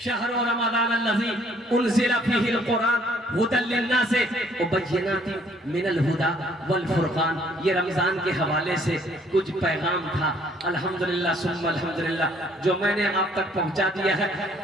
रमजान अल्लज़ी उनज़िला फ़ीहिल कुरान हुदल लिन्नास व बय्यिनातिन मिनल हुदा वल फुरक़ान। ये रमजान के हवाले से कुछ पैगाम था अल्हम्दुलिल्लाह सुम्मा अल्हम्दुलिल्लाह जो मैंने आप तक पहुंचा दिया है।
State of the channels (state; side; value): normal; both; correlation 0.62